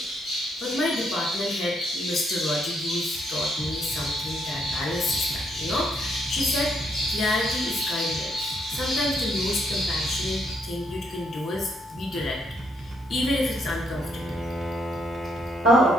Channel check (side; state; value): both; normal; correlation 0.74